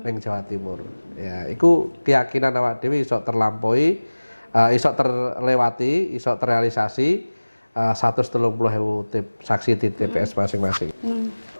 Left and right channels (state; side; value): inverted; both; correlation -1.00